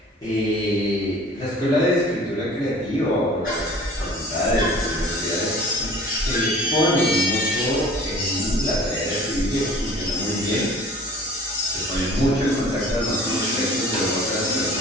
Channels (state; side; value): normal; both; correlation 0.47